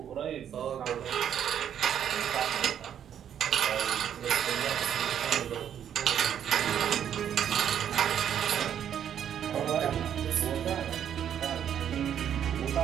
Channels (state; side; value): quieter; left; 9.4 dB